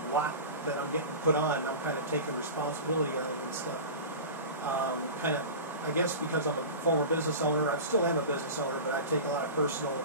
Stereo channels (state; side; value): inverted; both; correlation -0.31